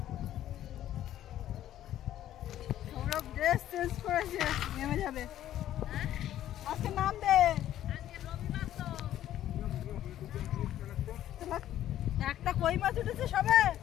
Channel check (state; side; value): quieter; right; 12.3 dB